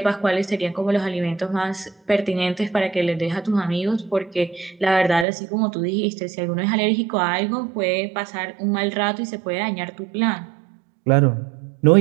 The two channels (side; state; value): left; drops out; at 5.2 s